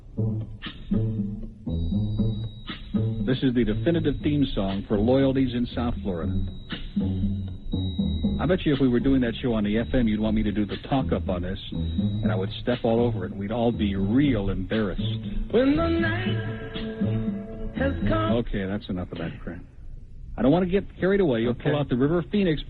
This is the definitive theme song for loyalties in South Florida. I bet you if we were doing that show on the FM, you'd want me to do the talk-up on this, and I would step all over it, and we'd all be real embarrassed. When the night has come. Okay, that's enough of that crap. I don't want to get carried away. You'll pull out the River Phoenix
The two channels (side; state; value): both; identical; correlation 1.00